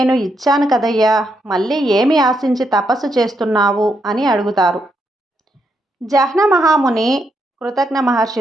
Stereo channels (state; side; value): normal; both; correlation 0.79